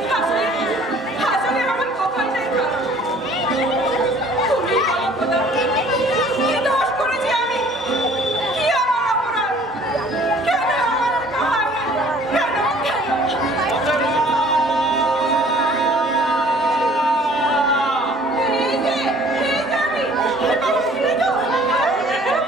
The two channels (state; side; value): normal; both; correlation 0.53